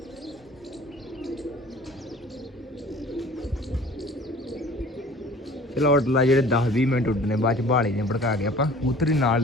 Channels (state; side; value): normal; both; correlation 0.48